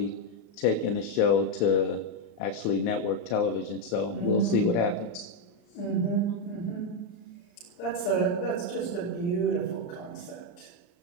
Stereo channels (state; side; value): late; right; 34 ms